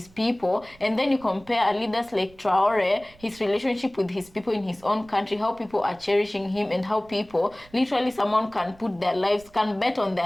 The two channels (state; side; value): noise; right; rumble, 26 dB below the sound